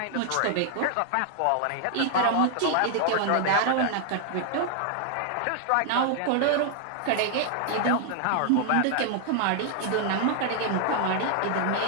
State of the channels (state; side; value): different; both; correlation -0.01